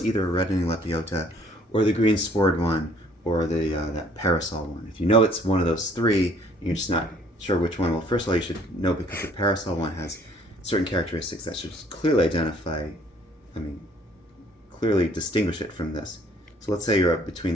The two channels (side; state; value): both; normal; correlation 0.59